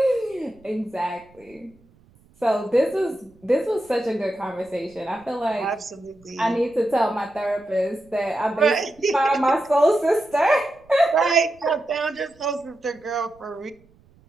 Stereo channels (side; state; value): right; noise; rumble, 29 dB below the sound